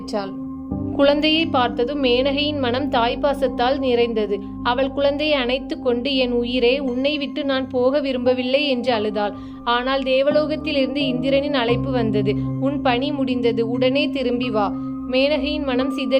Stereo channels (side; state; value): both; identical; correlation 1.00